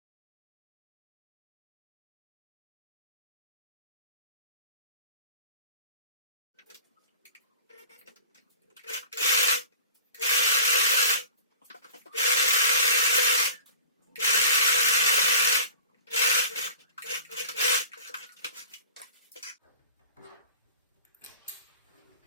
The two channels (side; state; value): both; inverted; correlation -0.42